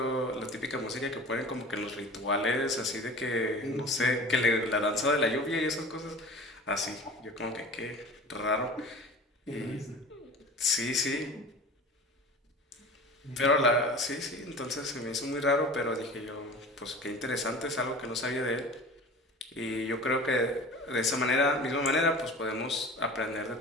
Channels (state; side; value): normal; both; correlation 0.38